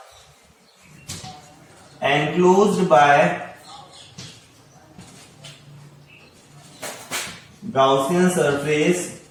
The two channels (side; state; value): both; identical; correlation 1.00